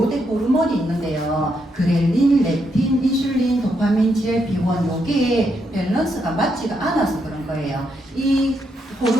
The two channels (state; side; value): normal; both; correlation 0.79